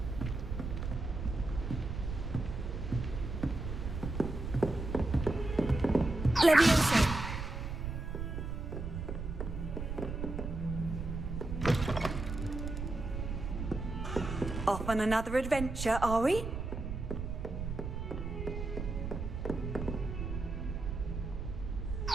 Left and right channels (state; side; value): noise; right; rumble, 5 dB below the sound